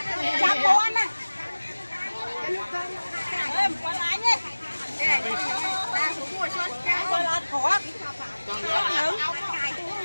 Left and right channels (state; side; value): inverted; both; correlation -1.00